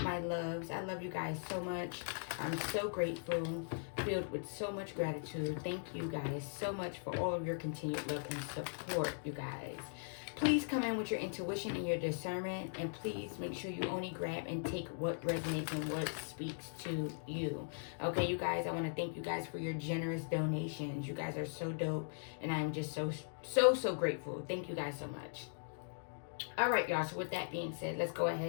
my loves. I love you guys so much. I'm so grateful, filled with so much gratitude. Thank you guys so much for all of your continued love and support, you guys. Please come in with your intuition and your discernment, and please make sure you only grab and take what resonates and what speaks to you. Okay, you guys, I want to thank you guys for your generous donations. You guys are so dope, and I'm just so grateful. Thank you guys so much. All right, y'all. So with that being said, let's go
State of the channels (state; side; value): silent; right; digital silence